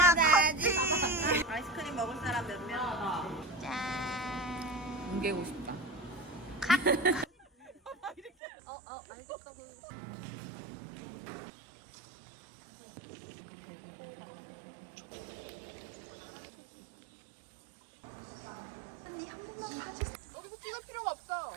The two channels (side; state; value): left; drops out; at 8.3 s